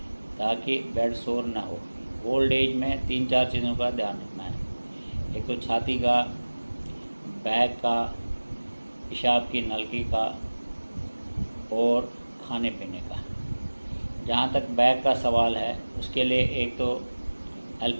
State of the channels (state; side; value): inverted; both; correlation -1.00